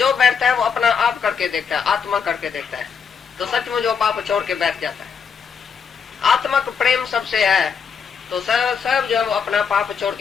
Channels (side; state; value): right; quieter; 6.5 dB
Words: बैठता है वो अपना आप करके देखता है, आत्मा करके देखता है, तो सचमुच वो पाप छोड़ के बैठ जाता है। आत्मक प्रेम सबसे है तो सब जो है वो अपना पाप छोड़